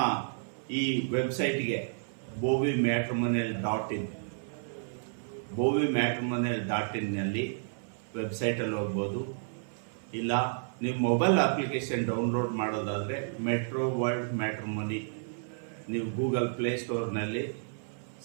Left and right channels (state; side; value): silent; left; 57 dB below the other